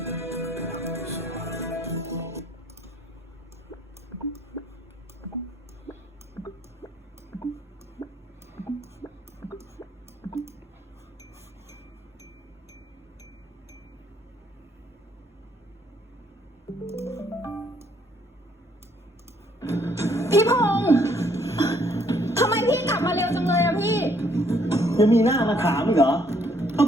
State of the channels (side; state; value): both; normal; correlation 0.66